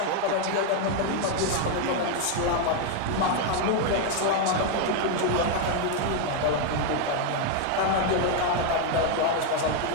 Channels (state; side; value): different; both; correlation 0.01